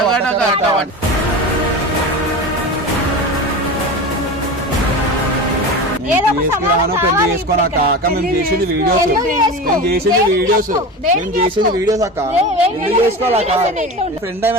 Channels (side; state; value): both; normal; correlation 0.29